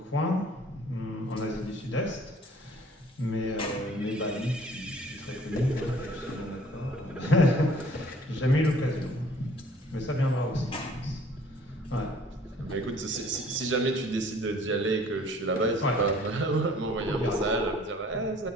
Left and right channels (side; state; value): both; normal; correlation 0.54